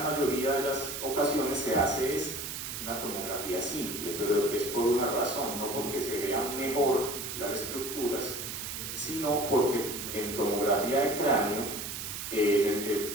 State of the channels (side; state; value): right; noise; hiss, 6 dB below the sound